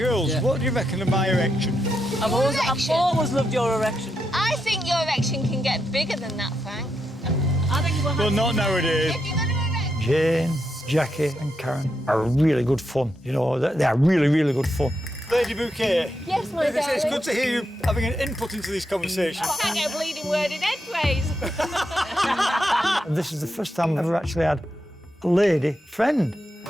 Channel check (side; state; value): both; normal; correlation 0.84